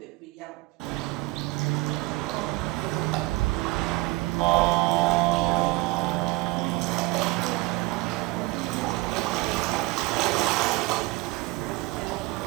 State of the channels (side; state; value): left; quieter; 21.6 dB